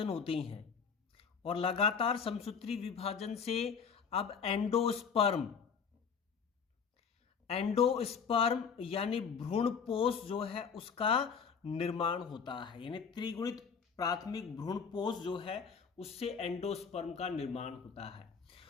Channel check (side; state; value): right; quieter; 6.3 dB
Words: होते हैं, और लगातार समसूत्री विभाजन से अब एंडोस्पर्म यानी भ्रूणपोष जो है उसका निर्माण होता है। यानी त्रिगुणित प्राथमिक भ्रूणपोष जो है उससे एंडोस्पर्म का निर्माण होता है।